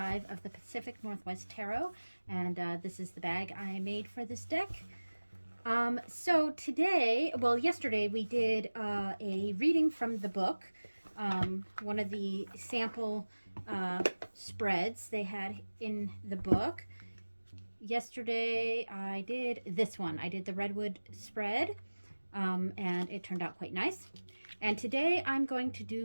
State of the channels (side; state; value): both; inverted; correlation -1.00